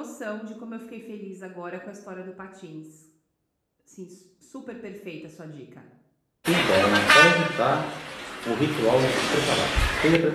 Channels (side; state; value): both; identical; correlation 1.00